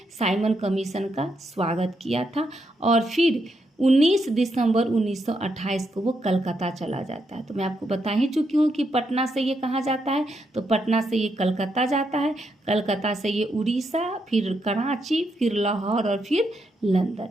साइमन कमीशन का स्वागत किया था और फिर 19 दिसंबर 1928 को वो कलकत्ता चला जाता है। तो मैं आपको बता ही चुकी हूँ कि पटना से ये कहाँ जाता है, तो पटना से ये कलकत्ता जाता है, कलकत्ता से ये उड़ीसा, फिर कराची, फिर लाहौर और फिर लंदन।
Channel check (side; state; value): both; normal; correlation 0.80